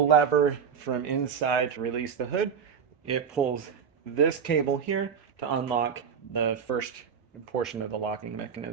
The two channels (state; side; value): quieter; left; 7.0 dB